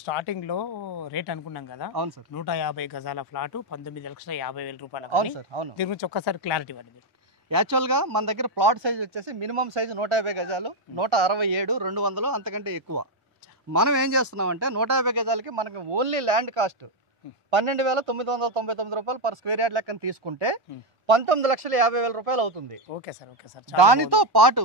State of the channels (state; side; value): normal; both; correlation 0.04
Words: స్టార్టింగ్ లో రేట్ అనుకున్నాం కదా. అవును సార్. 150 గజాల ఫ్లాట్ 19,50,000 రూపాయలు. అవును సార్, అవును. దీని గురించి ఒక్కసారి క్లారిటీ ఇవ్వండి. యాక్చువల్గా మన దగ్గర ప్లాట్ సైజ్ వచ్చేసి మినిమం సైజు 150 గజాలు, 167, 200 అంతకంటే ఎక్కువ. మనం ఏం చేస్తున్నామంటే 150 గజాలకి మనకి ఓన్లీ ల్యాండ్ కాస్ట్ 12,999 రూపాయలు పర్ స్క్వేర్ యార్డ్ లెక్కన తీసుకుంటే 19,50,000 రూపాయలు అవుతుంది. Okay sir, okay sir. దానితో పాటు